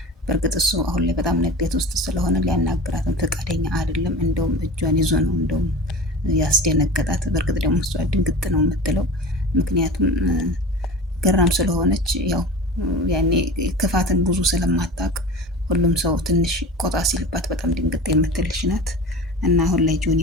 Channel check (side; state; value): both; normal; correlation 0.34